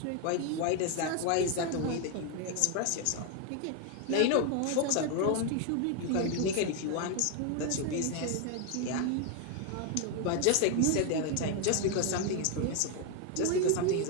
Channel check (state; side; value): different; both; correlation 0.01